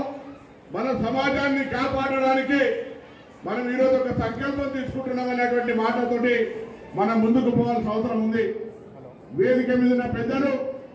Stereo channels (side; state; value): both; identical; correlation 1.00